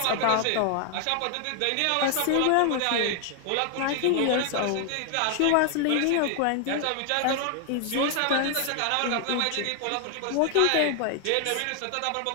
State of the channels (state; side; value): different; both; correlation 0.00